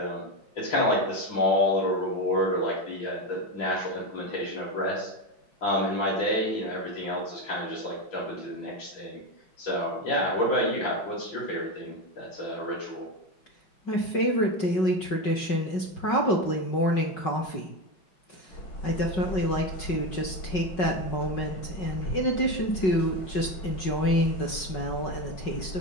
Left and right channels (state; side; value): late; right; 5.4 ms